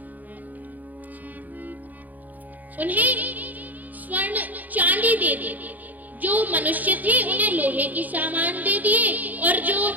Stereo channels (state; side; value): late; left; 0.082 ms